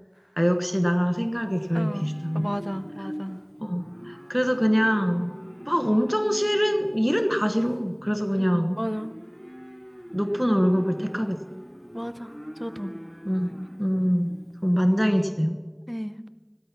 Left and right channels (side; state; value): both; identical; correlation 1.00